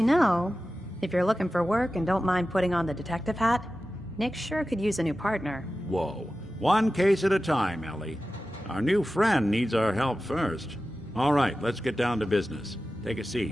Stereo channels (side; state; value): both; normal; correlation 0.94